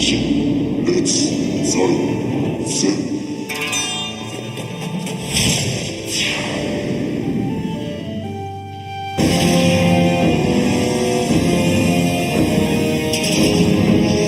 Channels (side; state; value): both; identical; correlation 1.00